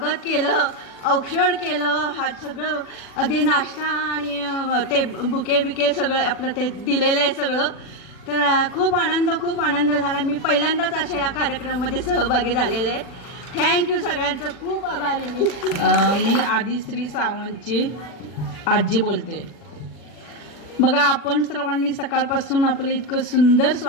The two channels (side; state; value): right; late; 40 ms